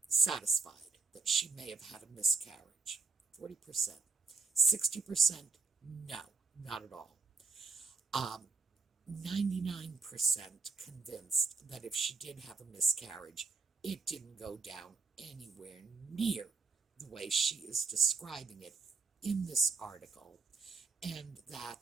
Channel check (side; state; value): left; quieter; 4.3 dB